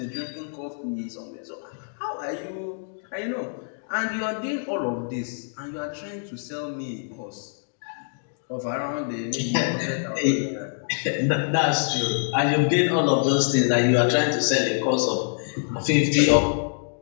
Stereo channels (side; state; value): right; silent; digital silence